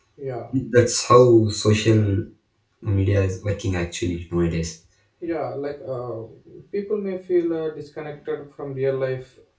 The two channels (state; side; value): identical; both; correlation 1.00